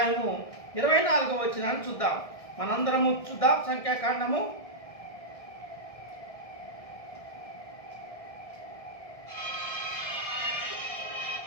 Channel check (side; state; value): right; late; 1.6 ms